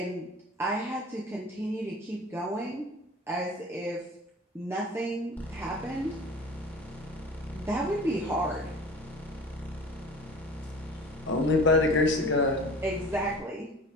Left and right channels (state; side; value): normal; both; correlation 0.41